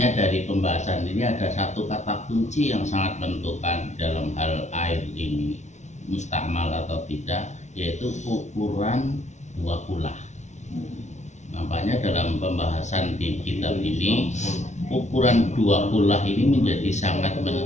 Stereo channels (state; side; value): late; right; 0.33 ms